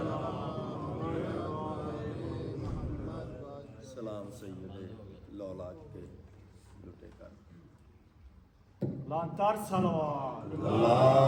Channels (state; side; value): identical; both; correlation 1.00